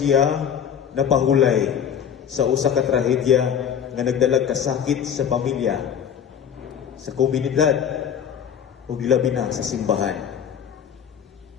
napahulay sa usa ka trahedya nga nagdalag kasakit sa pamilya, sa komunidad, o gilabi na sa simbahan.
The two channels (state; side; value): quieter; right; 8.4 dB